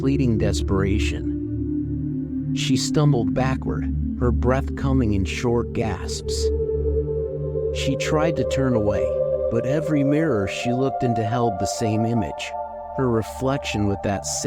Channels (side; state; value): both; identical; correlation 1.00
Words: desperation. She stumbled backward, her breath coming in short gasps. She tried to turn away, but every mirror she looked into held the same image, her reflection with that